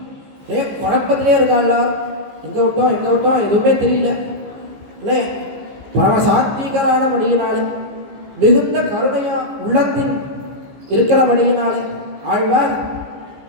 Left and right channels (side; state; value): left; late; 15 ms